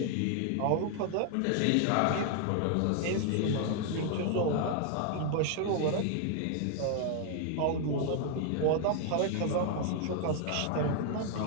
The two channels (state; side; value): different; both; correlation 0.00